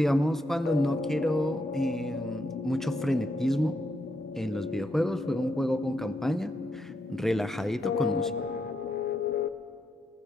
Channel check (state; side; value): normal; both; correlation 0.80